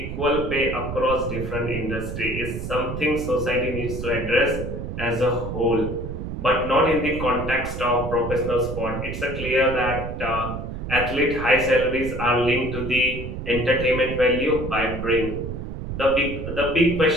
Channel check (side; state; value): right; noise; rumble, 6 dB below the sound